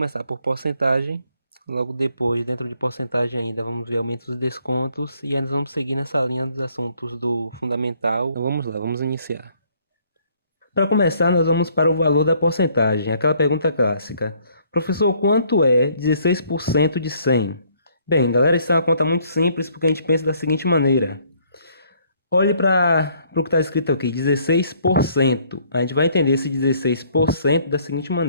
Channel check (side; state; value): both; inverted; correlation -0.64